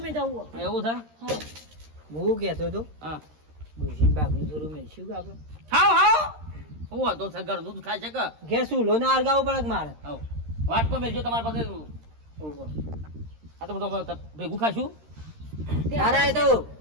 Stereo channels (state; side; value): late; left; 13 ms